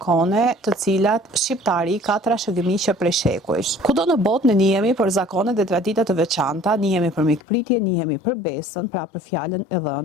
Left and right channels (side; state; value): right; drops out; at 7.4 s